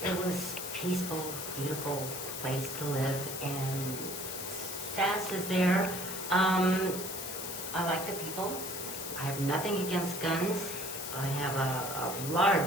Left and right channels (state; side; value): noise; left; hiss, 6 dB below the sound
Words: it was peaceful, beautiful place to live, and SASS is there. I like the people. I have nothing against guns. I have a